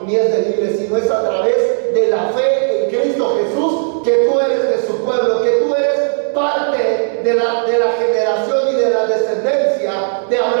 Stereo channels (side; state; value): left; silent; 61 dB below the other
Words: ni es de libre, sino es a través de la fe en Cristo Jesús que tú eres de su pueblo, que tú eres parte de la generación y de la descendencia de